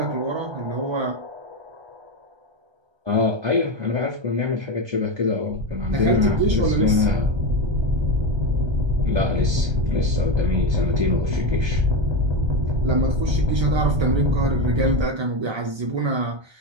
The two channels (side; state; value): left; late; 1.3 ms